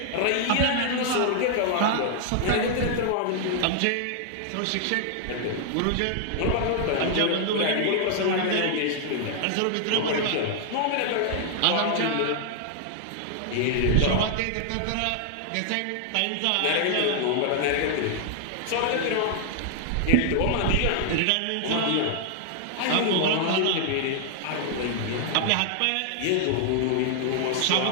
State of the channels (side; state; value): both; different; correlation 0.00